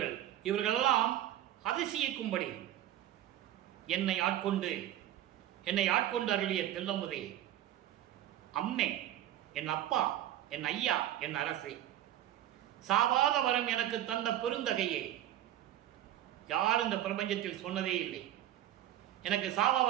இவர்களெல்லாம் அதிசயிக்கும்படி என்னை ஆட்கொண்டு அருளிய தெல்லமுதே, அம்மே, என் அப்பா, என் ஐயா, என் அரசே, சாவாத வரம் எனக்கு தந்த பெருந்தகையே. யார் இந்த பிரபஞ்சத்தில் சொன்னதே இல்லை. எனக்கு சாவா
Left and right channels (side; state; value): left; quieter; 12.7 dB